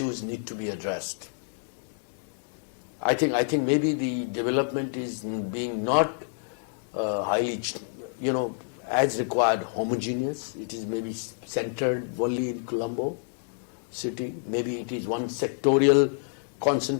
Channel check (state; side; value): silent; right; digital silence